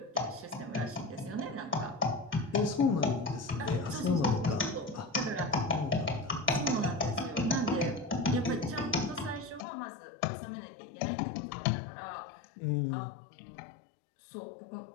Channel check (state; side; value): drops out; right; at 9.7 s